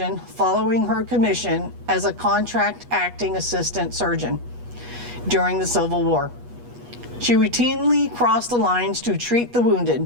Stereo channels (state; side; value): late; left; 8.3 ms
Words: following her commission as a contract acting assistant surgeon during the Civil War. She routinely crossed the lines to treat the wounded.